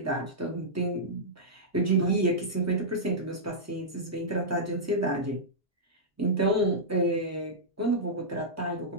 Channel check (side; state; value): both; normal; correlation -0.12